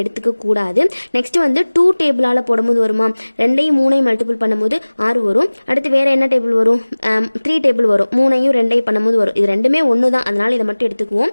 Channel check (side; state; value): both; inverted; correlation -1.00